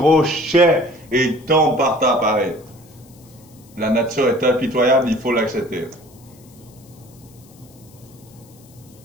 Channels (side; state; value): left; noise; hiss, 27 dB below the sound